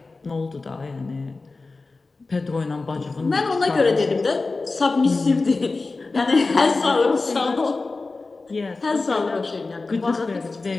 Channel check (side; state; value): right; quieter; 3.7 dB